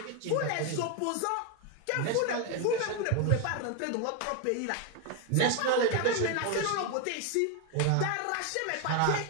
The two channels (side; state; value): both; different; correlation 0.01